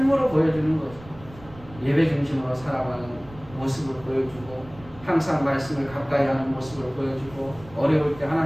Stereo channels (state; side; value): noise; right; rumble, 19 dB below the sound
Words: 보여주는 거죠. 예배 중심으로 살아가는 모습을 보여주고, 항상 말씀을 가까이 하는 모습을 보여주고, 어려울 때